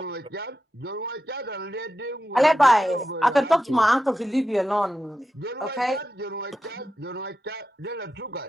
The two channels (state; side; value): normal; both; correlation 0.89